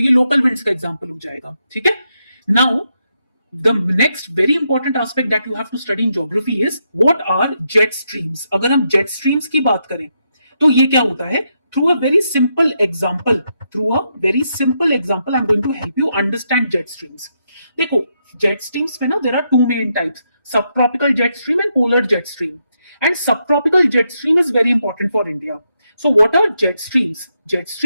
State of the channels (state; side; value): inverted; both; correlation -0.81